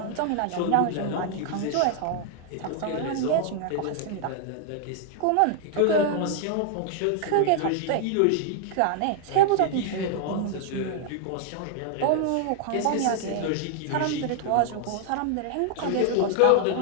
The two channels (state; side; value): different; both; correlation 0.00